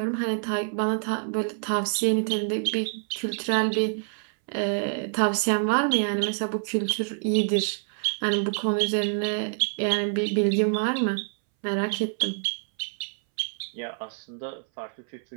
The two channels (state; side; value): silent; left; 60 dB below the other